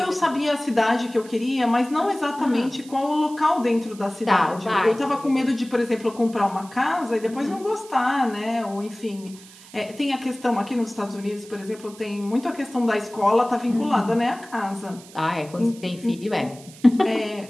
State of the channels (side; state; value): right; noise; hiss, 21 dB below the sound